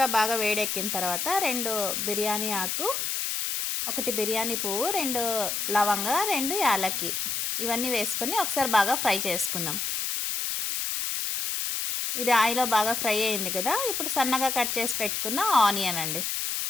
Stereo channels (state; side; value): noise; left; hiss, 1 dB below the sound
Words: బాగా వేడెక్కిన తర్వాత 2 బిర్యానీ ఆకు, 1 బిర్యానీ పువ్వు, 2 లవంగ, 2 యాలక్కి ఇవన్నీ వేసుకొని ఒకసారి బాగా ఫ్రై చేసుకుందాం. ఇది ఆయిల్లో బాగా ఫ్రై అయింది కదా. ఇప్పుడు సన్నగా కట్ చేసి పెట్టుకున్న ఆనియన్ అండి,